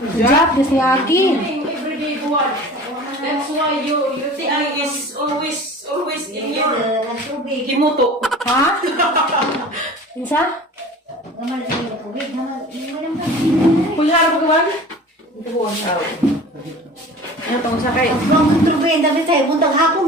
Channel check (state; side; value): normal; both; correlation 0.41